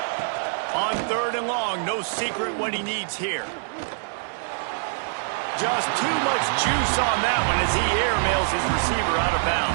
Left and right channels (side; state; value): left; silent; digital silence